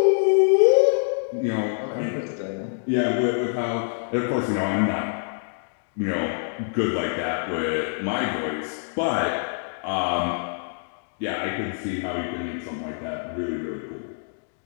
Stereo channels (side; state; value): right; silent; digital silence